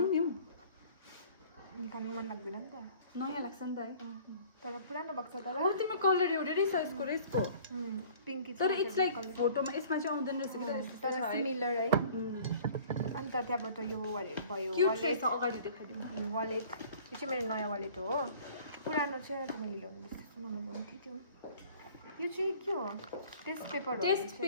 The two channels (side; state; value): both; inverted; correlation -0.50